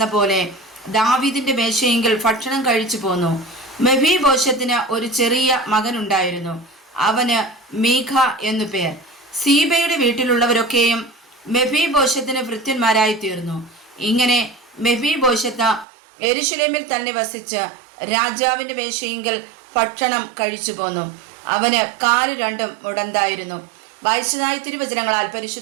പോലെ ദാവീദിന്റെ മേശയെങ്കിൽ ഭക്ഷണം കഴിച്ചു പോന്നു. മെഫീബോശെത്തിന് ഒരു ചെറിയ മകനുണ്ടായിരുന്നു. അവന് മീഖ എന്നു പേർ. സീബയുടെ വീട്ടിലുള്ളവരൊക്കെയും മെഫീബോശെത്തിന് ഭൃത്യന്മാരായി തീർന്നു. ഇങ്ങനെ മെഫീബോശെത്ത് യെരൂശലേമിൽ തന്നെ വസിച്ച് രാജാവിന്റെ മേശയെങ്കിൽ ഭക്ഷണം കഴിച്ചു പോന്നു. അവന് 2 കാലും മുടന്തായിരുന്നു. വായിച്ചതായ തിരുവചനങ്ങളാൽ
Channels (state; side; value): drops out; left; at 15.9 s